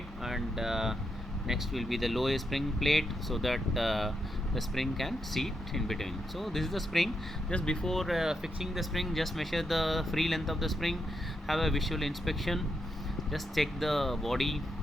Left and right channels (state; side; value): normal; both; correlation 0.82